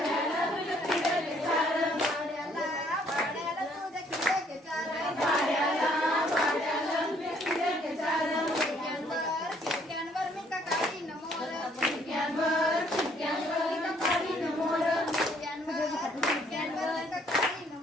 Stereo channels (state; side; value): normal; both; correlation 0.64